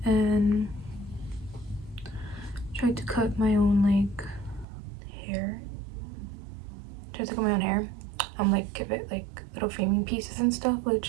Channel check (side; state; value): left; drops out; at 4.7 s